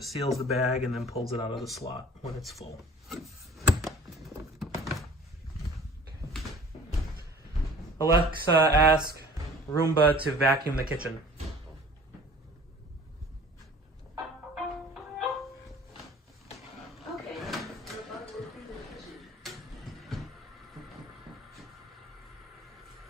seals the bag and then pulls it out of the slot when it's full. Alexa, ask Roomba to vacuum the kitchen. Okay.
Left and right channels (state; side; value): normal; both; correlation 0.48